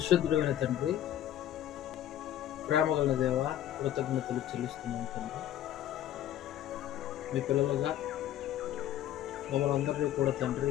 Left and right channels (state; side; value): quieter; right; 11.9 dB